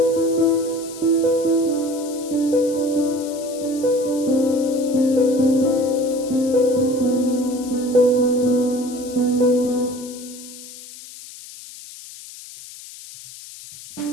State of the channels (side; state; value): left; noise; hiss, 16 dB below the sound